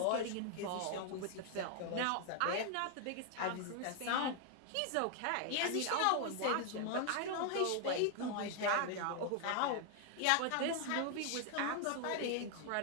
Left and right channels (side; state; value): both; different; correlation 0.00